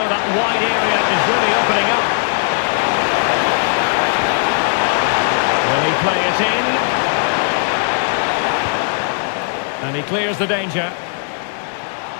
that wide area is really opening up. Will he play it in? And he clears the danger.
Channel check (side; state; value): right; silent; digital silence